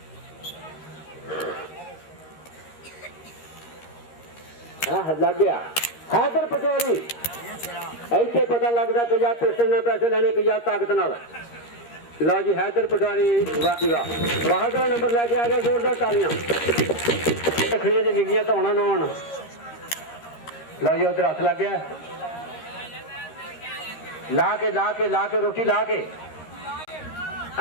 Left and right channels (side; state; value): right; late; 13 ms